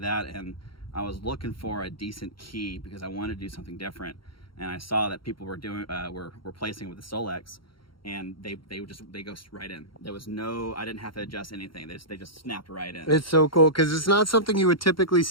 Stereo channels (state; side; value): late; right; 0.73 ms